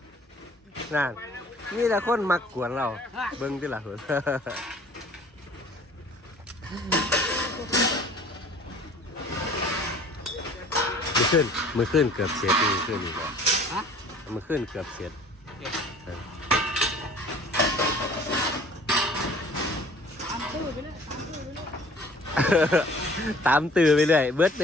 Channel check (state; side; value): normal; both; correlation 0.50